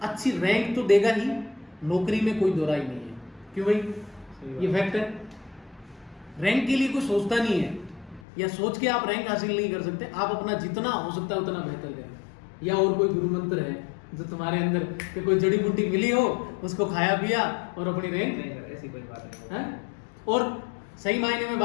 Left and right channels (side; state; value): right; drops out; at 8.2 s